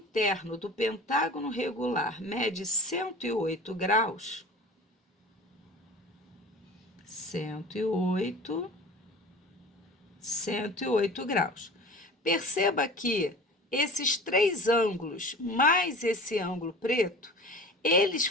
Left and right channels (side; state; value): both; normal; correlation 0.39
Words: do pentágono regular mede 108 graus, 108 graus. Perceba que esses três ângulos, mais esse ângulo preto, eles